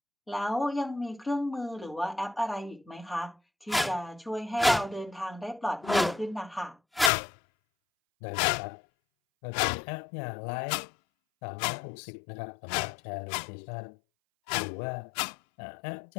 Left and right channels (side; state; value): right; drops out; at 7.1 s